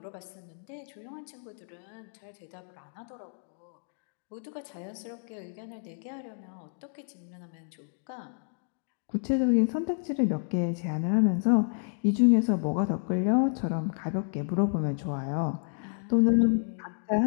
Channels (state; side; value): silent; right; digital silence